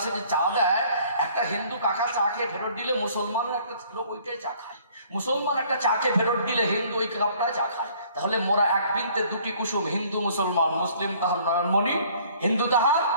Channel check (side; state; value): both; inverted; correlation -0.57